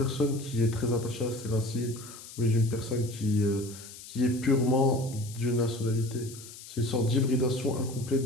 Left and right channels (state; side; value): noise; left; hiss, 15 dB below the sound